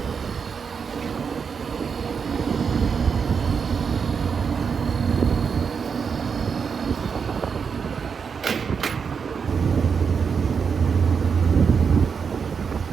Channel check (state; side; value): quieter; left; 6.1 dB